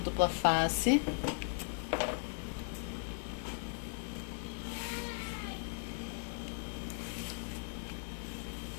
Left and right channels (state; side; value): silent; right; 53 dB below the other